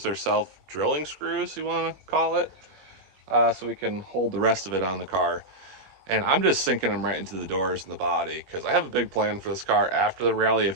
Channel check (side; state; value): left; late; 21 ms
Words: or self-drilling screws you want to call it, so we can hold the rest of it on the car. And I'm just sinking them right into the doors and the body because I have a big plan for this car after the rally